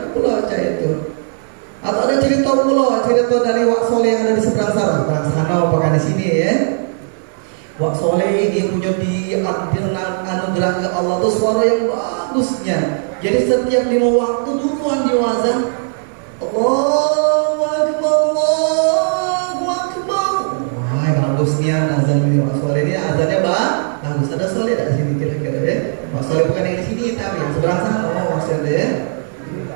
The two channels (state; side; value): silent; left; digital silence